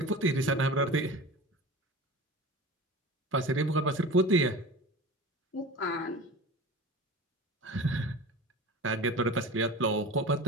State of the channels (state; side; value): normal; both; correlation 0.34